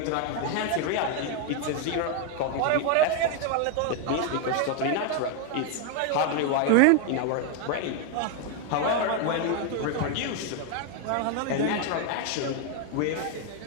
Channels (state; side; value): different; both; correlation 0.01